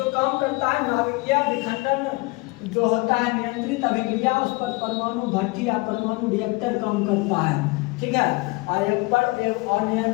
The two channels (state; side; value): quieter; right; 25.2 dB